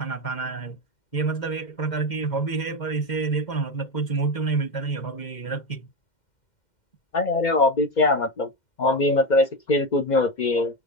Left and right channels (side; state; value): right; late; 2.1 ms